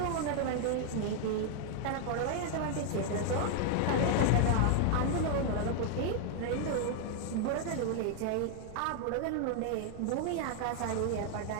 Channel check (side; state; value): both; different; correlation 0.00